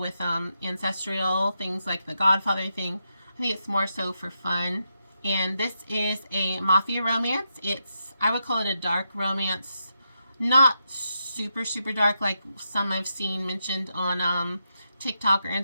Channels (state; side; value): inverted; both; correlation -0.84